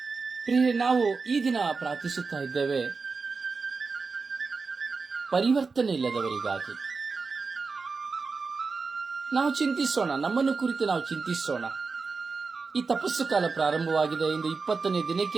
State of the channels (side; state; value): left; quieter; 4.6 dB